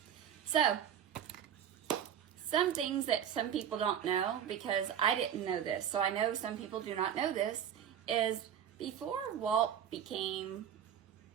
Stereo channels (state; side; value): quieter; left; 9.2 dB